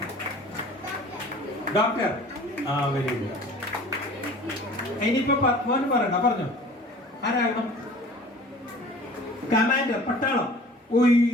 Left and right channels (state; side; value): normal; both; correlation 0.45